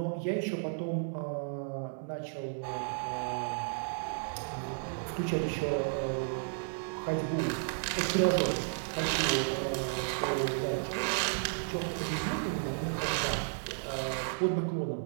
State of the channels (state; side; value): silent; left; 56 dB below the other